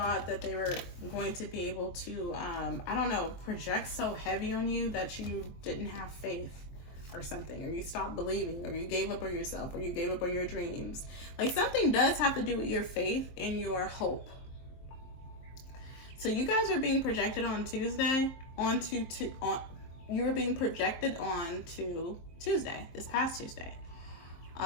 that they were going to be able to, I don't know, project so heavy on you that you didn't have faith or something, or you stopped believing, or you gave up on yourself, or you gave up on your dreams. Like something does have to do with your faith and your hope. So you guys are being projected on Tuesday, you were being projected on to Tuesday, this past Tuesday,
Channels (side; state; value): right; late; 23 ms